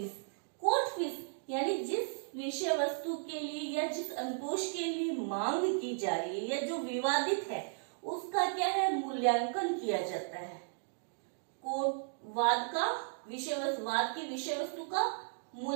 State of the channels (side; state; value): left; silent; digital silence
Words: कोर्ट फीस यानी जिस विषय वस्तु के लिए या जिस अनुतोष के लिए मांग की जा रही है या जो विवादित है उसका क्या है, मूल्यांकन किया जाता है। कोर्ट वाद की विषय वस्तु का